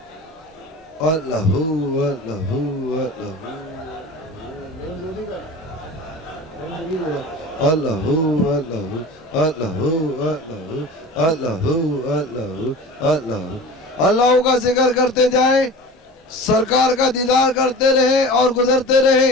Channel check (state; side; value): normal; both; correlation 0.36